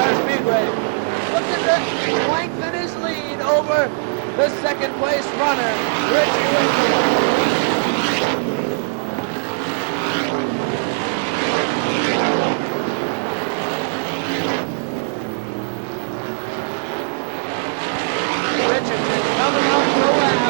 Speedway. Look at the length in his lead over the second place runner, Richie Winston. Richardson coming up the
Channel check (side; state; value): left; silent; digital silence